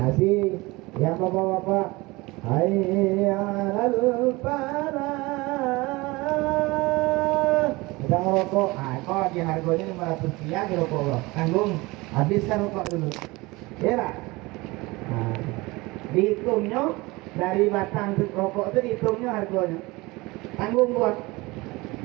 yang bapak-bapak, hayya 'alal falah. Sedang rokok, kok di harganya 500 rupiah di rokok lo. Tanggung, habiskan rokok dulu. Kira dihitungnya dari batang rokok itu dihitungnya harganya. Tanggung buat.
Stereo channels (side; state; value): left; quieter; 22.6 dB